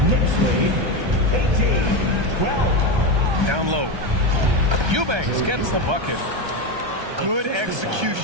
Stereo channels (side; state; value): left; late; 1.3 ms